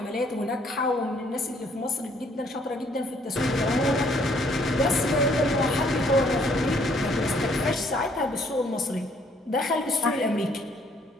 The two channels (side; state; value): both; normal; correlation 0.64